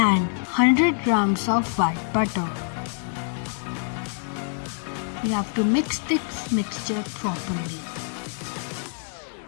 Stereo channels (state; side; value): silent; right; 61 dB below the other